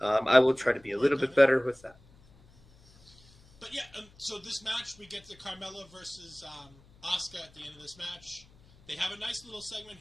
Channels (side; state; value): left; noise; hum, 27 dB below the sound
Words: I will try to be a little bit better with that. But yeah, so this match, we get the Carmella versus Asuka at the end of this match. They have a nice little segment